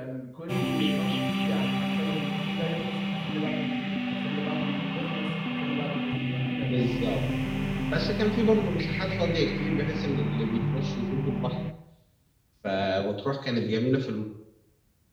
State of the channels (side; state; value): both; identical; correlation 1.00